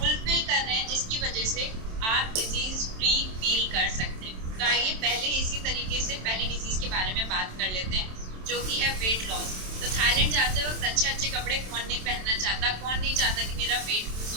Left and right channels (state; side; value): late; left; 27 ms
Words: कर रहे हैं, जिसकी वजह से आप डिजीज फ्री फील कर सकते हैं। तो आइए पहले इसी तरीके से पहली डिजीज के बारे में बात कर लेते हैं, जो कि है वेट लॉस। तो थाईलैंड जाते वक्त अच्छे अच्छे कपड़े कौन नहीं पहनना चाहता, कौन नहीं चाहता कि मेरा वेट लूज